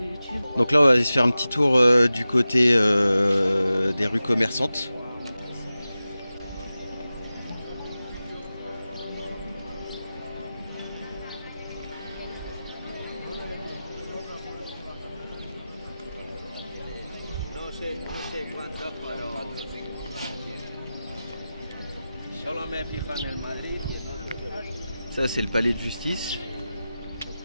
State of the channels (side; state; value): both; inverted; correlation -0.94